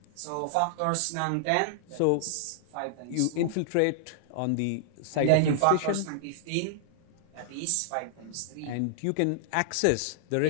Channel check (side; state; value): both; different; correlation -0.01